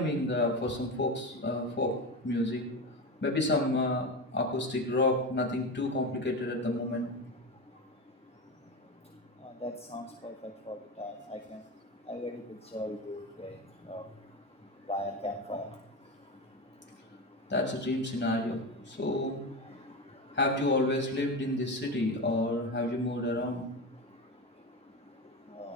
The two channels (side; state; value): both; normal; correlation 0.21